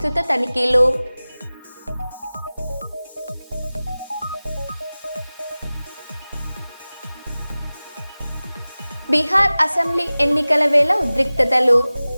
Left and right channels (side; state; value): both; inverted; correlation -0.98